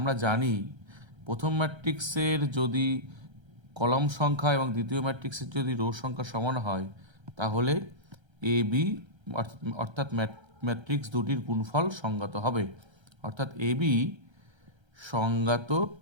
জানি প্রথম ম্যাট্রিক্সের যদি কলাম সংখ্যা এবং দ্বিতীয় ম্যাট্রিক্সের যদি রো সংখ্যা সমান হয় তাহলে এ বি অর্থাৎ ম্যাট্রিক্স দুটির গুণফল সংজ্ঞাত হবে, অর্থাৎ এ বি সংজ্ঞাত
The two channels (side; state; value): left; late; 1.3 ms